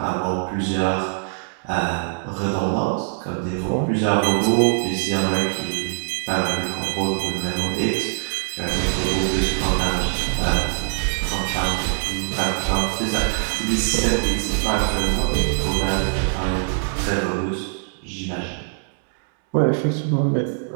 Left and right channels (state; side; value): silent; left; 64 dB below the other